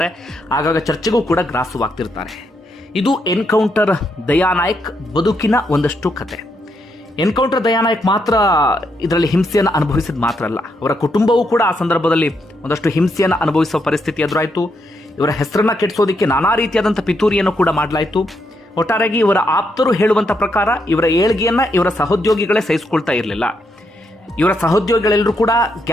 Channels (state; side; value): normal; both; correlation 0.79